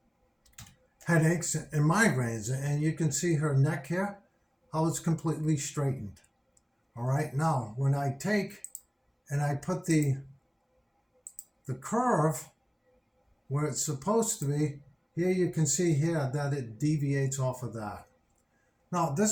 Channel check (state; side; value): identical; both; correlation 1.00